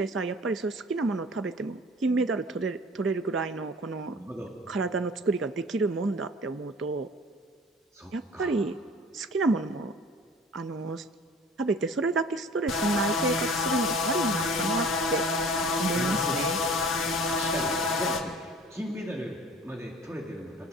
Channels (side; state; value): both; normal; correlation 0.46